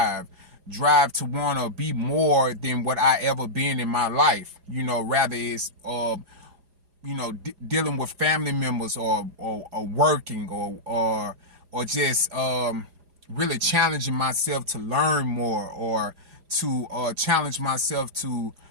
to want to be more than what I ever been in my life. Rather it's dealing with family members or working or just really challenging myself to learn more or to challenge myself to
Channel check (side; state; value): left; late; 4.9 ms